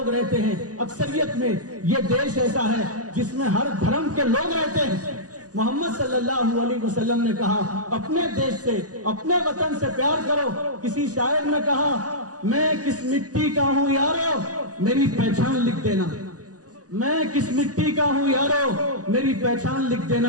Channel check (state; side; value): late; left; 0.67 ms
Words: رہتے ہیں اکثریت میں. یہ دیش ایسا ہے جس میں ہر دھرم کے لوگ رہتے ہیں. محمد صلی اللہ علیہ وسلم نے کہا اپنے دیش سے, اپنے وطن سے پیار کرو. کسی شاعر نے کہا میں کس مٹی کا ہوں یارو, میری پہچان لکھ دینا. میں کس مٹی کا ہوں یارو, میری پہچان لکھ